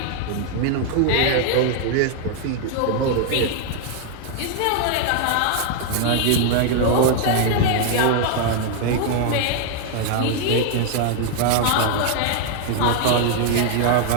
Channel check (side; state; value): both; different; correlation 0.00